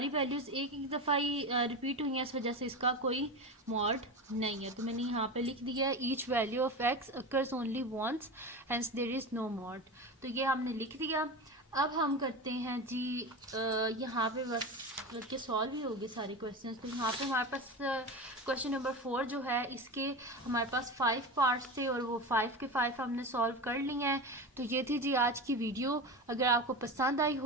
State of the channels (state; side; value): normal; both; correlation 0.24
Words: वैल्यूज एक एक दफ़ा ही रिपीट हुई हैं, इस वजह से इसका कोई मॉड नहीं है। तो मैंने यहाँ पे लिख दिया है each value of x occurs only once hence there is no mod. तो ये हमने लिख दिया। अब हम करते हैं जी यहाँ पे बस बल्कि सॉल्व ही हो गए सारे क्वेश्चंस। तो यहाँ पे हमारे पास क्वेश्चन नंबर 4 जो है, इसके हमारे पास 5 पार्ट्स थे और वो 5 के 5 हमने सॉल्व कर लिए हैं। तो ये थी जी आज की वीडियो। अगर आपको पसंद आई